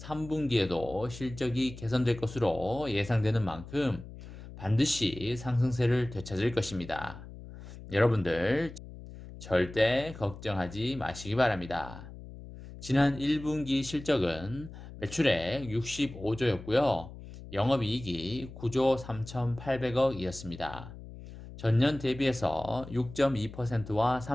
실적이 개선될 것으로 예상되는 만큼 반드시 상승세를 되찾을 것입니다. 여러분들 절대 걱정하지 마시기 바랍니다. 지난 1분기 실적은 매출액 65조였고요. 영업이익이 9조 3,800억이었습니다. 전년 대비해서 6.2%와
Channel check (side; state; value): left; noise; hum, 14 dB below the sound